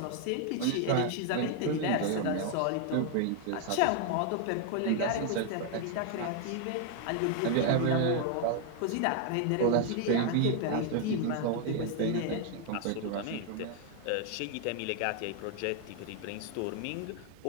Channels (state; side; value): different; both; correlation 0.00